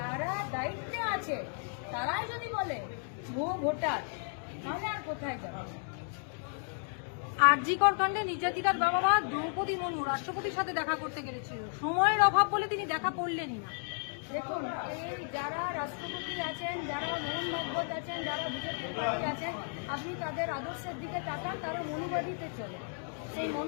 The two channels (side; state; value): right; silent; 55 dB below the other